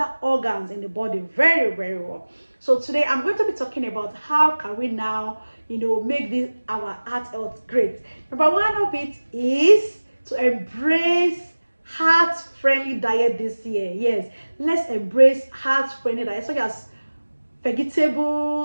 organs in the body very, very well. So today I'm going to be talking about how can we now, make this our heart health great. Number one of it is to embrace heart-friendly diet this year. Yes, let's embrace heart-friendly diet such as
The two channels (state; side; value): inverted; both; correlation -1.00